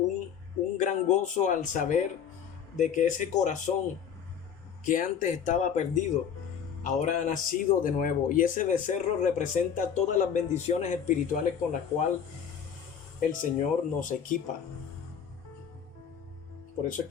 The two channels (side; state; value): right; quieter; 7.8 dB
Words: gran gozo al saber de que ese corazón que antes estaba perdido, ahora ha nacido de nuevo. Y ese becerro representa todas las bendiciones espirituales con las cuales el Señor nos equipa. Por eso es